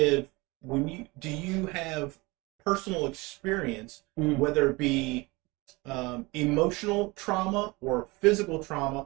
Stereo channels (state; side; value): quieter; left; 24.0 dB